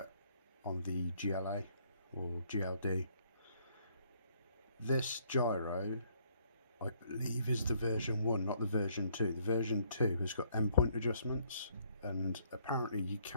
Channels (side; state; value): both; inverted; correlation -0.67